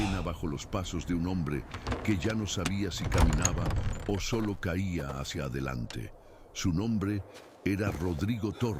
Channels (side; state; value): both; identical; correlation 1.00